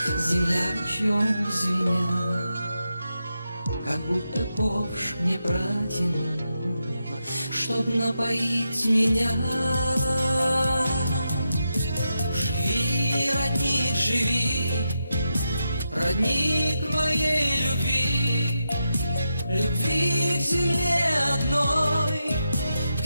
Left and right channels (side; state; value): both; inverted; correlation -0.87